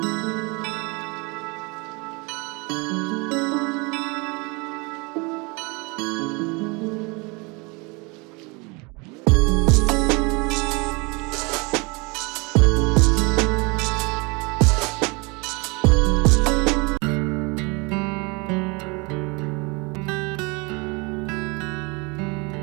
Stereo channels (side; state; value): left; quieter; 28.6 dB